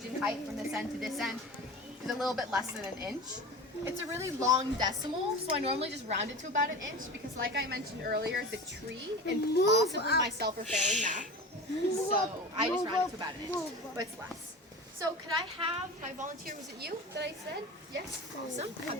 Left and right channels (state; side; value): normal; both; correlation 0.32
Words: in height from this end to this end is a little bit less than an inch. It's a really long decimal, so I normally just round it to about an inch because like I mentioned earlier, the tree and possibly myself are failing math. So I just round it to about an inch, but it's less. So could I have my volunteer, was it you that I said? Yes, awesome. Have